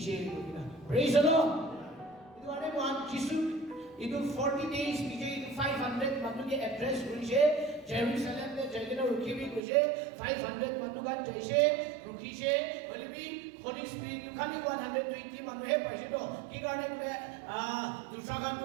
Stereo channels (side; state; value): left; drops out; at 9.6 s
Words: কইনা praise the Lord itu ane মহান যিশু itu 40 days পিছে itu 500 মানুকে এড্রেস করিছে জেরুজালেম নে জায়গা রুকিবি কইছে 500 মানুগান যাইছে রুকিছে বলিবি Holy Spirit খালি 120 মানুহে পাইছিল কি কাৰণে বলে দুসাগানটো